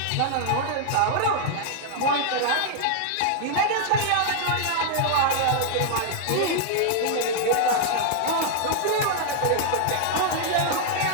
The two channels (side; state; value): both; different; correlation -0.01